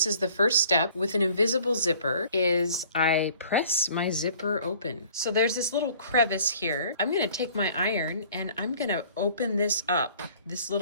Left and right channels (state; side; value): inverted; both; correlation -0.53